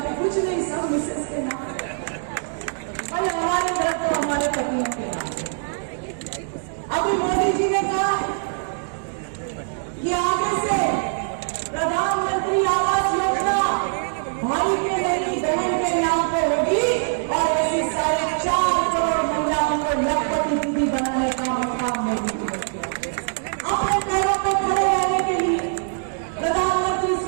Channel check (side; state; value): left; silent; digital silence